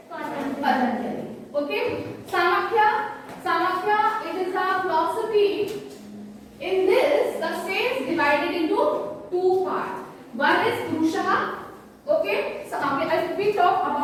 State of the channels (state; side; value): identical; both; correlation 1.00